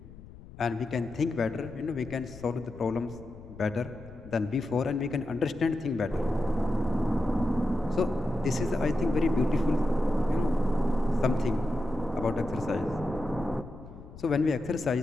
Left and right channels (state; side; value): noise; left; rumble, 17 dB below the sound